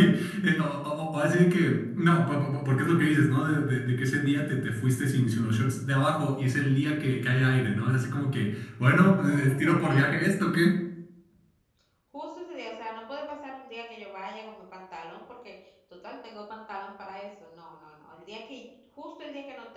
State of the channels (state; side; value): identical; both; correlation 1.00